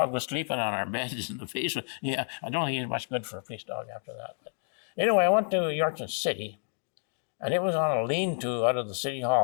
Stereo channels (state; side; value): silent; right; 57 dB below the other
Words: was sleeping on our beds in the basement. Yeah, I don't think he was much good for a police dog after that. But anyway, I went to Yorkton City, and it was on a lean-to out of the city